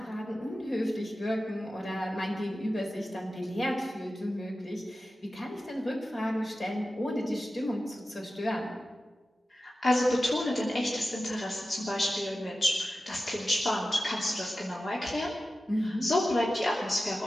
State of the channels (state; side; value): normal; both; correlation 0.94